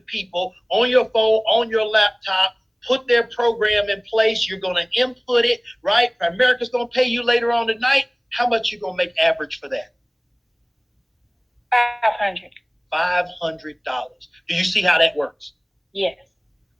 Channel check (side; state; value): both; identical; correlation 1.00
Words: people on your phone, on your laptop, put their program in place. You're going to input it, right? Primerica's going to pay you later on tonight. How much you going to make average for that? $500. $500. Do you see how that works? Yes.